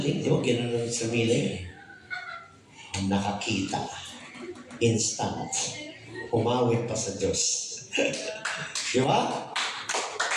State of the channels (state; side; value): identical; both; correlation 1.00